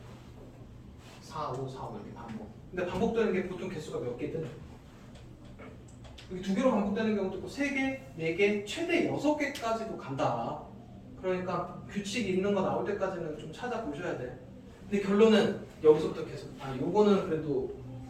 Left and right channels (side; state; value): both; identical; correlation 1.00